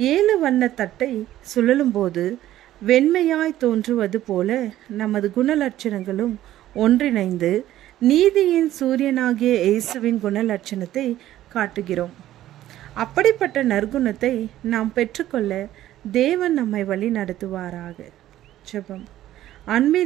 7 வண்ண தட்டை சுழலும் போது வெண்மையாய் தோன்றுவது போல நமது குணலட்சணங்களும் ஒன்றிணைந்து நீதியின் சூரியனாகிய இயேசுவின் குணலட்சணத்தை காட்டுகிறோம். அப்படிப்பட்ட நற்குணத்தை நாம் பெற்றுக்கொள்ள தேவன் நம்மை வழி நடத்துவாராக. ஜெபம்.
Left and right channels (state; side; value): quieter; left; 13.6 dB